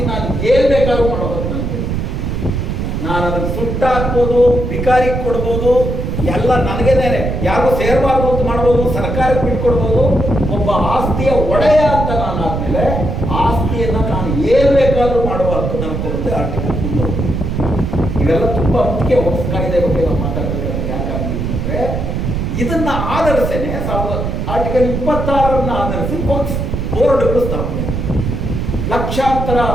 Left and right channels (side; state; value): right; noise; rumble, 2 dB below the sound